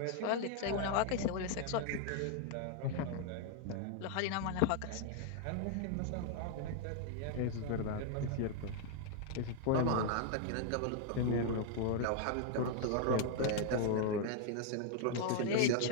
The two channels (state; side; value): different; both; correlation 0.00